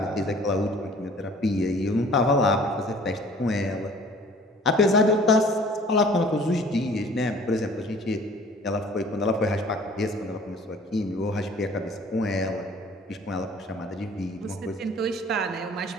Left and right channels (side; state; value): both; normal; correlation 0.51